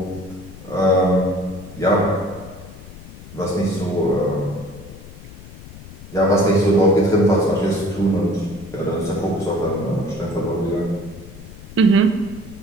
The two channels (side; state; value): left; noise; rumble, 16 dB below the sound